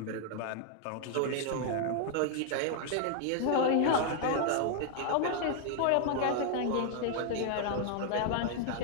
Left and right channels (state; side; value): different; both; correlation 0.00